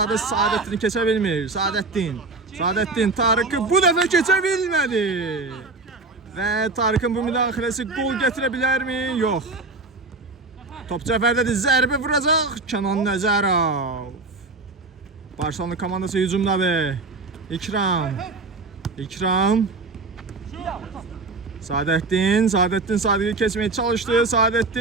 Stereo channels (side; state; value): left; quieter; 3.4 dB